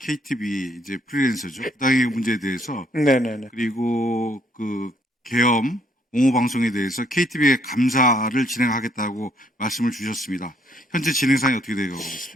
이제 프리랜서죠. 부당행위 문제에 대해서 네네네. 그리고 그 계엄 옹호 방송에 대해서 KTV의 감사를 진행하겠다고 말씀을 주셨습니다. 현재 진행상이 어떻게 되고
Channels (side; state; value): both; normal; correlation 0.68